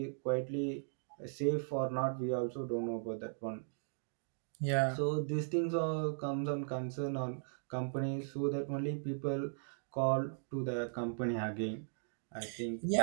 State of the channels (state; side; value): silent; left; digital silence